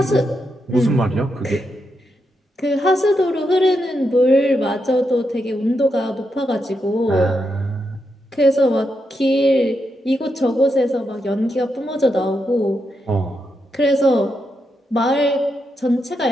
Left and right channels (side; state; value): both; normal; correlation 0.84